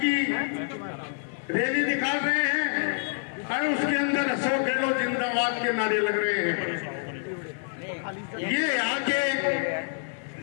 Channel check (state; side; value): silent; right; 60 dB below the other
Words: रैली निकाल रहे हैं और उसके अंदर अशोक गहलोत जिंदाबाद के नारे लग रहे हैं। ये यहाँ के